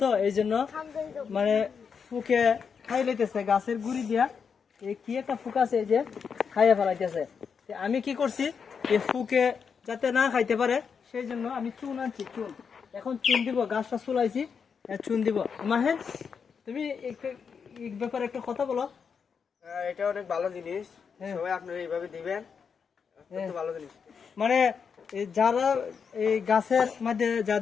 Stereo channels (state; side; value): quieter; right; 6.3 dB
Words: তো এই জন্য মানে ফুকে খাই লইতেছে গাছের গুড়ি দিয়া। এই কি একটা ফুক আছে এই যে খাইয়া ফেলাইতেছে। আমি কি করছি, এই ফুকে যাতে না খাইতে পারে সেই জন্য আমি চুন আনছি, চুন। এখন চুন দিব, গাছটা চুলাইছি, চুন দিব। মাহেন তুমি এই ব্যাপারে একটা কথা বলো। এটা অনেক ভালো জিনিস, সবাই আপনারা এইভাবে দিবেন, অত্যন্ত ভালো জিনিস। মানে যারা এই গাছের মধ্যে